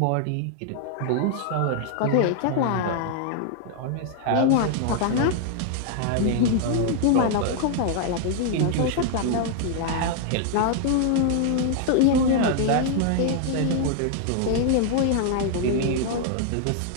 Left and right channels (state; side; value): different; both; correlation 0.00